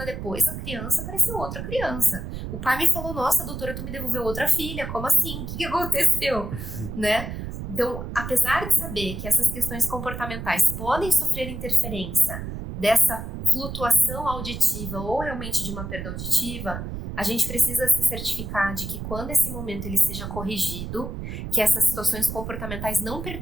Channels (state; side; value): noise; right; rumble, 7 dB below the sound